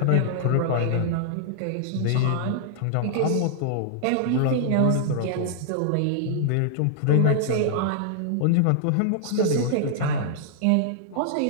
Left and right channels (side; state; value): both; different; correlation -0.01